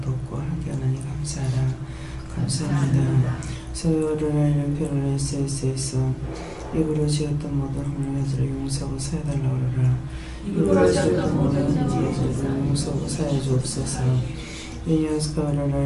돕고 함께 하나님 감사하라. 감사합니다. 서로를 별을 SSS 입으로 지었던 모든 헛물들을 용서하고 사해달라고 하라. 입으로 지었던 모든 헛물들을 용서하고 사해 주옵소서.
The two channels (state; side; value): identical; both; correlation 1.00